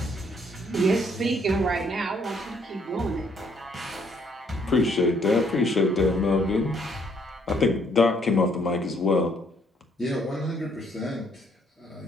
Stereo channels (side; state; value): both; normal; correlation 0.68